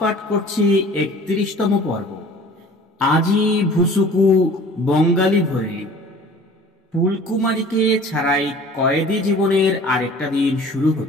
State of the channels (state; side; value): normal; both; correlation 0.47